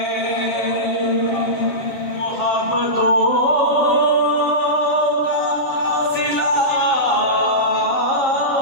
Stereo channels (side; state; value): right; late; 7.4 ms